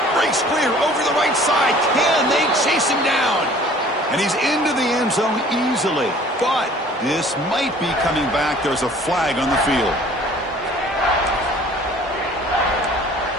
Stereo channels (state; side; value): normal; both; correlation 0.51